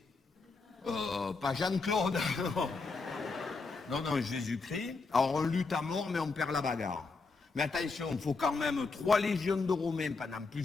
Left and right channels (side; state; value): right; quieter; 4.2 dB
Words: Pas Jean-Claude. Non, non, Jésus-Christ. Alors, on lutte à mort, mais on perd la bagarre. Mais attention, il faut quand même 3 légions de Romains pendant